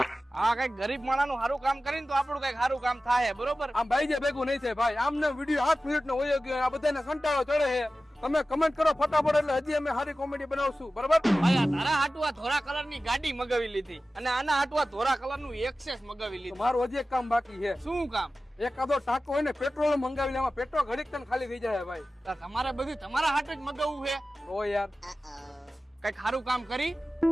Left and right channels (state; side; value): normal; both; correlation 0.95